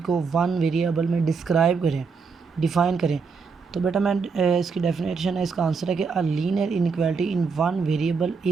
को वन वेरिएबल में डिस्क्राइब करें, डिफ़ाइन करें। तो बेटा मैं इसकी डेफिनेशन है, इसका आंसर है कि a linear inequality in one variable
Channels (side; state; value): left; quieter; 5.2 dB